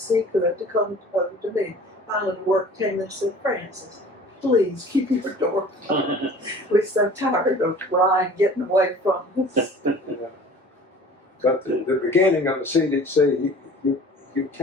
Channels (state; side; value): normal; both; correlation 0.46